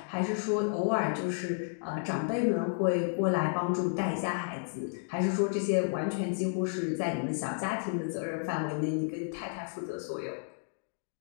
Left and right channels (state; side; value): silent; right; digital silence